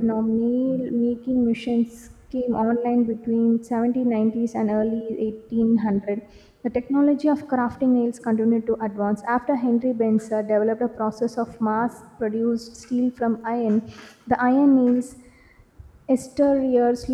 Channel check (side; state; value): both; identical; correlation 1.00